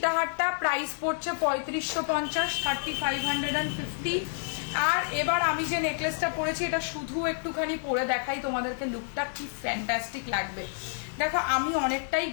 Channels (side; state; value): right; silent; digital silence